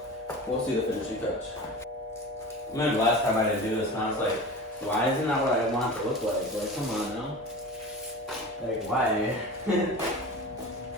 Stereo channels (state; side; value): normal; both; correlation 0.33